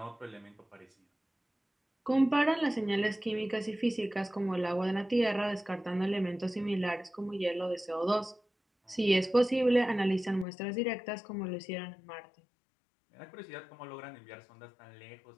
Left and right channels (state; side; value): drops out; right; at 10.5 s